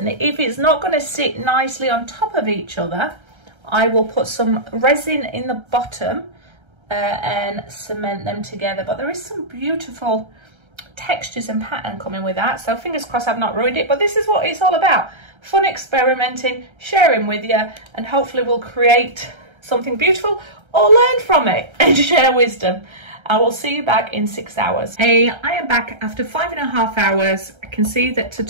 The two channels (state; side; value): late; left; 1.3 ms